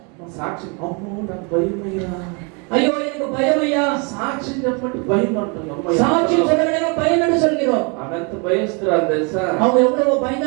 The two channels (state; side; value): quieter; left; 33.3 dB